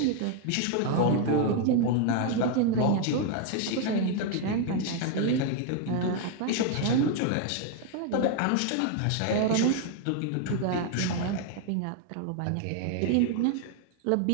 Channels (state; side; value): different; both; correlation 0.00